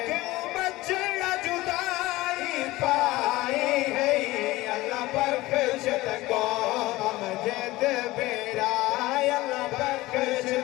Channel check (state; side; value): quieter; right; 18.8 dB